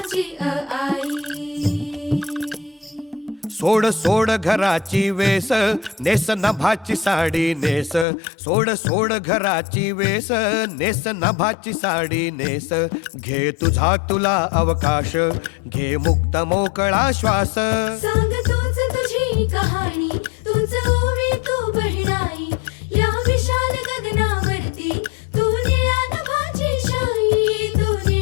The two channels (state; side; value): drops out; right; at 8.1 s